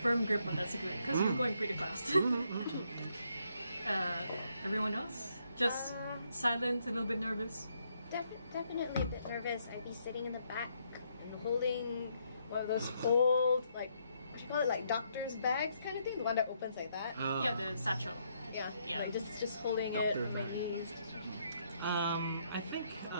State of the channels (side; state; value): both; inverted; correlation -0.74